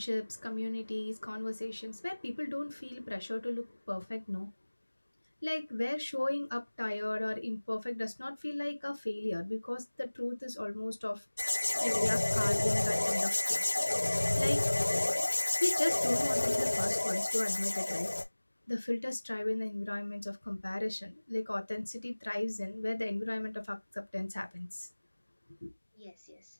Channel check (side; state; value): both; inverted; correlation -1.00